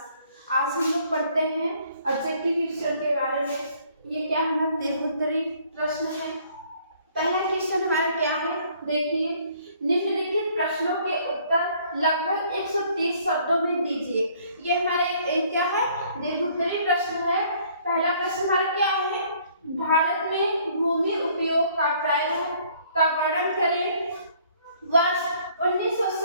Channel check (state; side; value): inverted; both; correlation -0.60